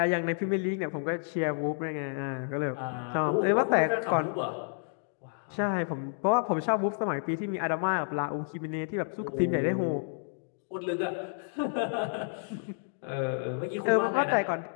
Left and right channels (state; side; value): silent; right; digital silence